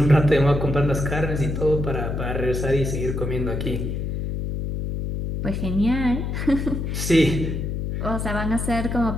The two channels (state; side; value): noise; left; hum, 3 dB below the sound